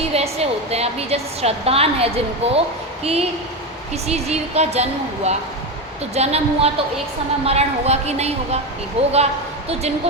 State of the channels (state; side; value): normal; both; correlation 0.15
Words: ऐसे होते हैं, अभी जैसे श्रद्धान है जिनको कि किसी जीव का जन्म हुआ, तो जन्म हुआ तो एक समय मरण होगा कि नहीं होगा, कि होगा। तो